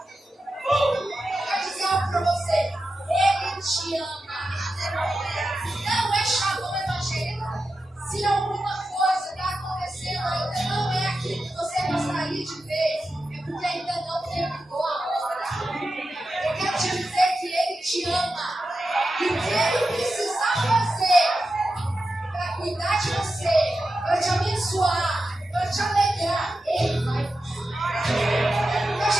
Quero dizer algo para você. Ele te ama. Não é chavão evangélico. Se alguma coisa está acontecendo ainda não é aquilo que você gostaria de ver, é porque ainda não terminou a hora. Eu quero te dizer que Ele te ama. E o que Ele precisar fazer para cuidar de você, para te abençoar, para te alegrar, Ele vai fazer.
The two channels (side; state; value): both; normal; correlation 0.90